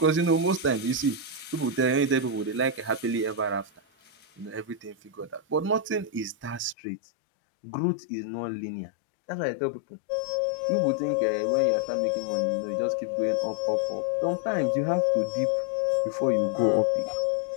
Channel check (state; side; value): drops out; right; at 6.8 s